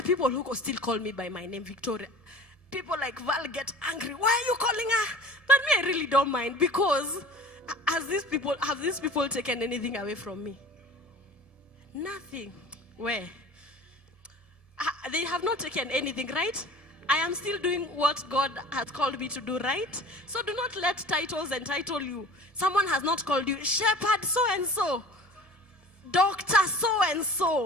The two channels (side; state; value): right; late; 1.7 ms